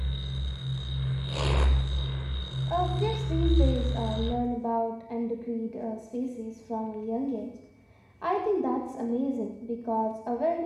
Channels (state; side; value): identical; both; correlation 1.00